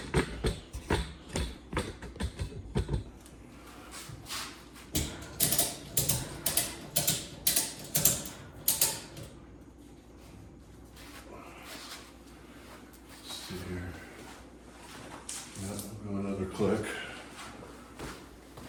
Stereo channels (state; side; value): identical; both; correlation 1.00